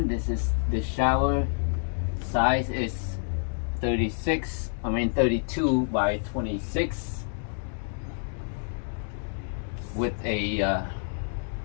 this is the shower size is 32 by 26 with a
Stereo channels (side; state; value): right; silent; digital silence